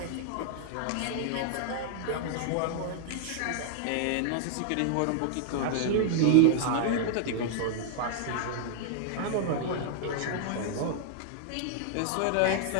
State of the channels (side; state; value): both; different; correlation 0.00